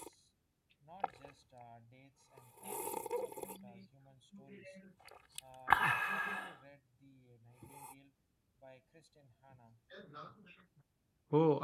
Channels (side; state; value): both; identical; correlation 1.00